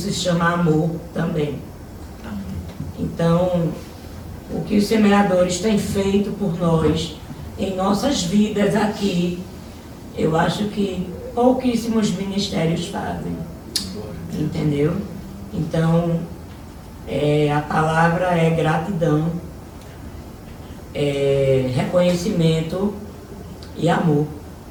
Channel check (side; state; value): both; identical; correlation 1.00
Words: se chama amor também. Então, o que os semeadores têm feito por nós, em nossas vidas aqui, eu acho que pouquíssimos ministérios fazem, entendeu? Então, a palavra é gratidão, reconhecimento e amor.